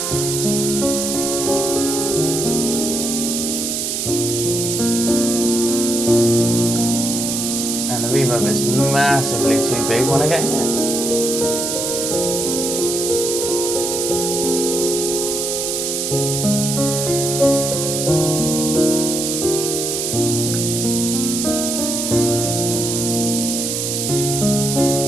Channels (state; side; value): noise; right; hiss, 1 dB below the sound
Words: And the reverb is massively too big when I get here.